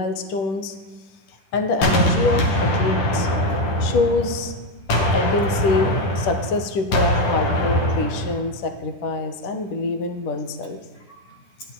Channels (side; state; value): right; late; 10 ms